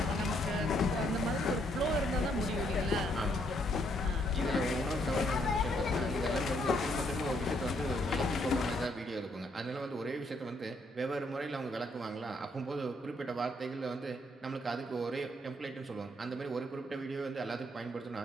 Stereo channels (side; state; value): both; normal; correlation 0.71